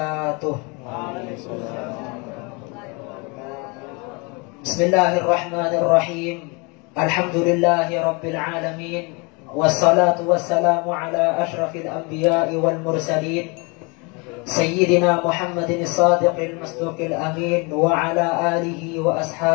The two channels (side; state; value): right; quieter; 30.0 dB